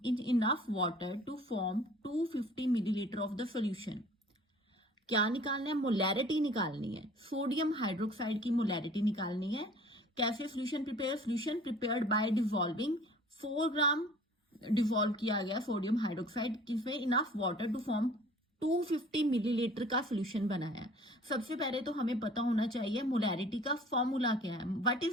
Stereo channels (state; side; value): normal; both; correlation 0.49